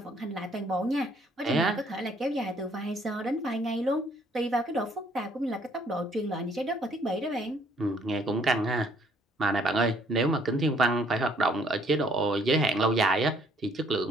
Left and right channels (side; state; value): both; normal; correlation 0.64